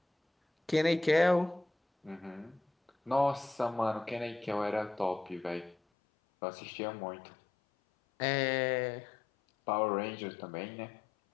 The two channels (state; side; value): drops out; right; at 5.8 s